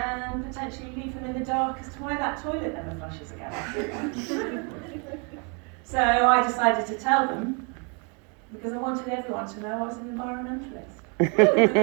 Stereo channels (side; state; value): left; quieter; 35.3 dB